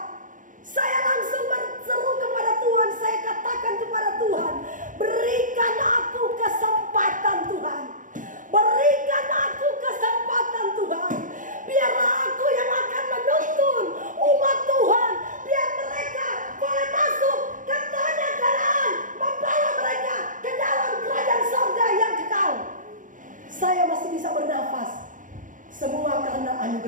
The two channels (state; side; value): late; left; 0.38 ms